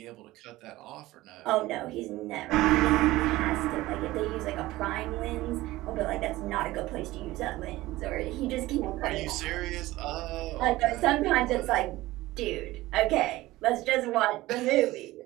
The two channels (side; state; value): left; quieter; 17.8 dB